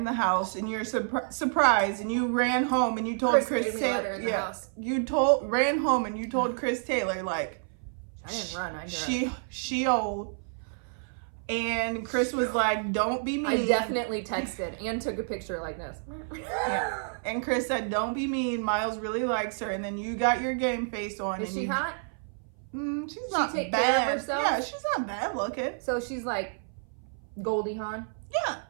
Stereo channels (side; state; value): left; silent; 57 dB below the other